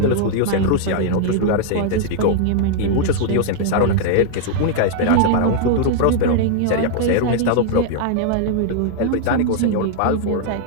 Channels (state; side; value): different; both; correlation -0.01